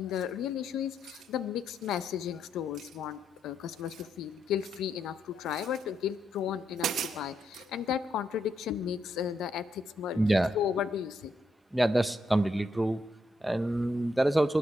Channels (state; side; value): normal; both; correlation 0.79